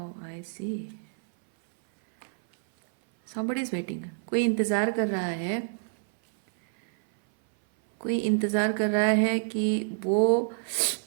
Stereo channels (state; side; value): silent; left; 58 dB below the other